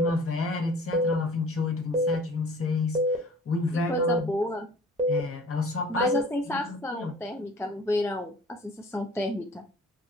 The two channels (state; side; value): normal; both; correlation 0.47